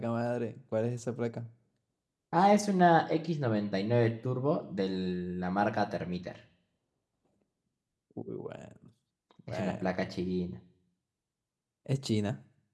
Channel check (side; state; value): both; identical; correlation 1.00